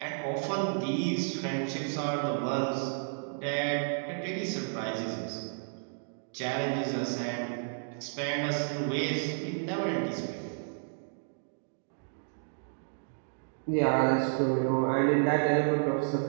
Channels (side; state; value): left; silent; digital silence